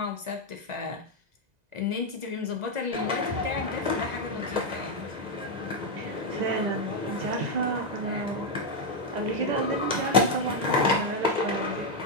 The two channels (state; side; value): late; left; 2.0 ms